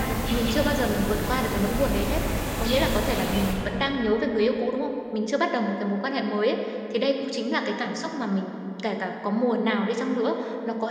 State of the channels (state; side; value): identical; both; correlation 1.00